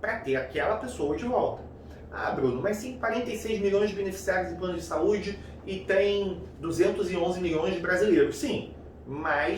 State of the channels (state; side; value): identical; both; correlation 1.00